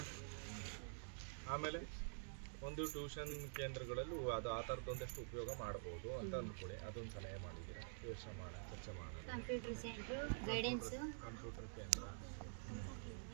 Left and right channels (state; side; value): silent; left; digital silence